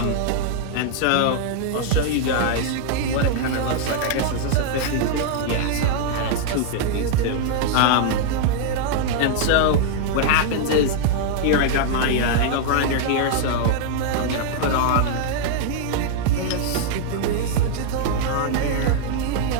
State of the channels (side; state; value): both; different; correlation -0.01